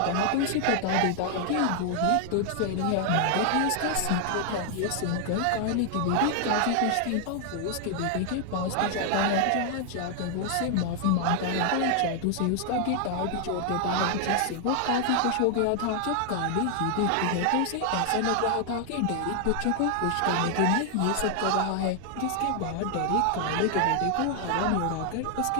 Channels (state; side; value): different; both; correlation 0.00